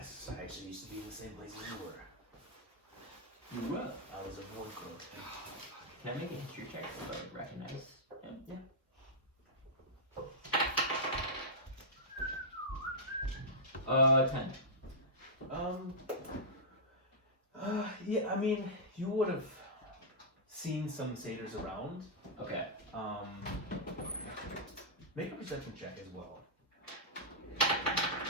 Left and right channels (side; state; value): both; normal; correlation -0.11